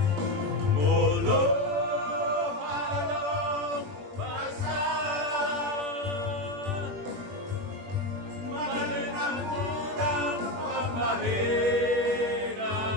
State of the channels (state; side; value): late; left; 21 ms